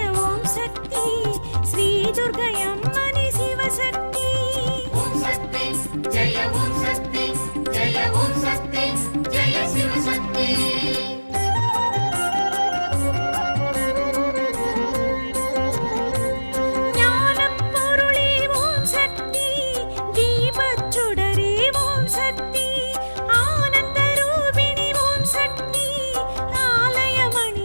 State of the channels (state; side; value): inverted; both; correlation -1.00